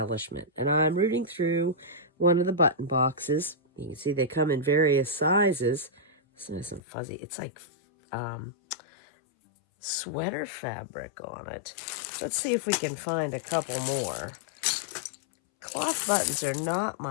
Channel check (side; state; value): right; drops out; at 6.8 s